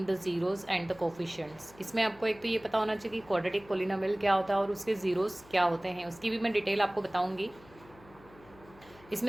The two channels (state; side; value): noise; left; hum, 23 dB below the sound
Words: the zeros and the coefficients. इसमें आपको एक तो ये पता होना चाहिए कि क्वाड्रेटिक पोलिनोमियल क्या होता है और उसके ज़ीरोज़ क्या होते हैं, उसकी भी मैं डिटेल आपको बताऊँगी।